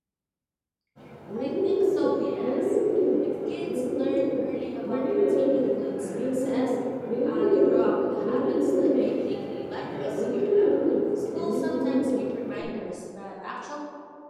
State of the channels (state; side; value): identical; both; correlation 1.00